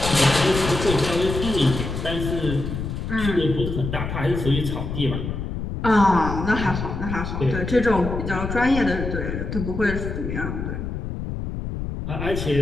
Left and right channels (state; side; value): noise; left; rumble, 5 dB below the sound